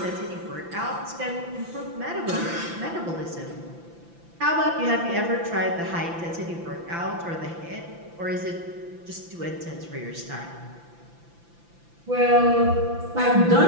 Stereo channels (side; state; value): left; late; 5.9 ms